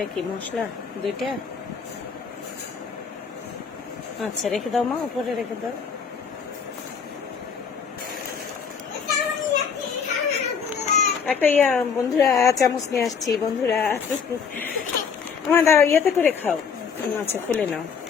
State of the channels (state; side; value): quieter; right; 6.3 dB